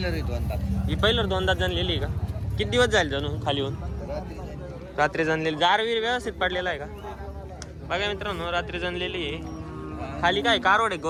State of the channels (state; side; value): identical; both; correlation 1.00